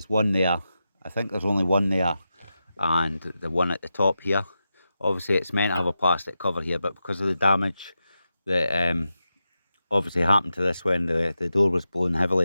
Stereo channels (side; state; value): both; inverted; correlation -0.89